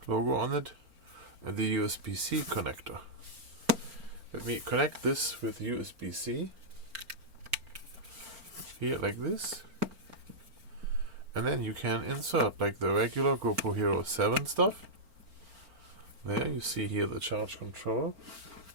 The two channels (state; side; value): late; left; 4.4 ms